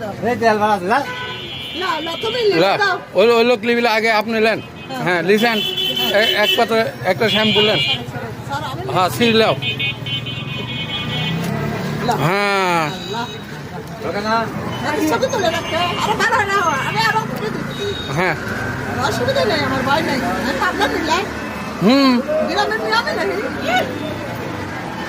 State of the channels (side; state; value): both; identical; correlation 1.00